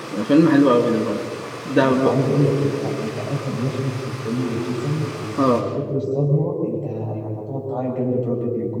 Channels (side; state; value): both; identical; correlation 1.00